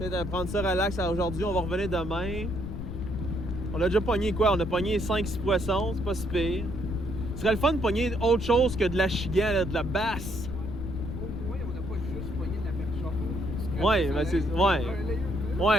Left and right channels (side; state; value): left; noise; rumble, 6 dB below the sound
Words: prendre ça relax aujourd'hui, on va revenir demain. On a déjà pogné quoi? On a pogné 5-6 poissons, c'est pas si pire. Ce serait le fun de pogner autre chose que de l'achigan, là, de la basse. Au moins, on n'a pas juste pogné de la perche. Ouais, mais c'est... Ouais.